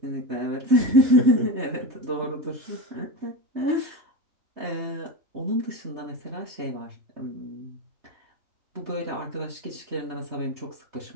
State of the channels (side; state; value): left; late; 3.2 ms